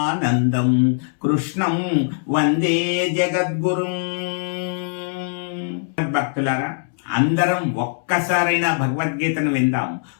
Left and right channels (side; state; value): right; silent; 65 dB below the other